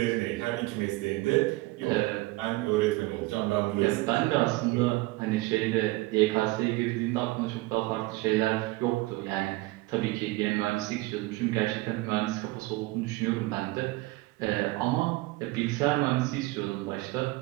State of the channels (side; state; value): left; quieter; 20.9 dB